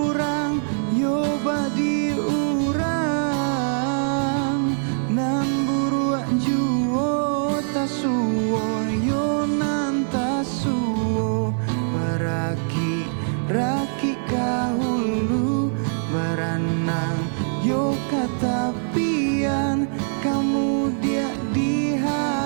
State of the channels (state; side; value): silent; left; 63 dB below the other